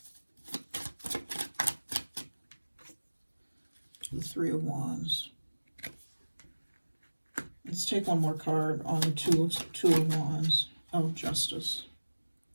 The 3 of Wands. Let's take one more card on the 2 of Wands. Oh, Justice.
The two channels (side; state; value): both; inverted; correlation -1.00